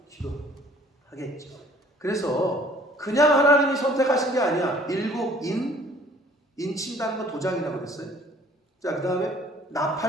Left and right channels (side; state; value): both; normal; correlation 0.55